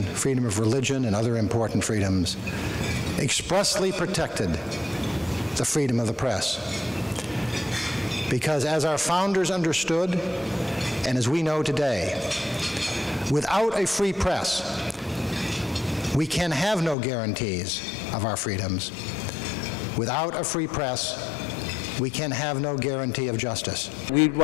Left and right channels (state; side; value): drops out; right; at 16.9 s